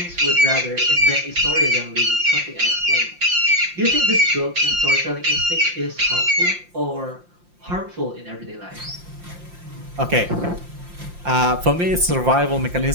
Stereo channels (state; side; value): late; left; 5.7 ms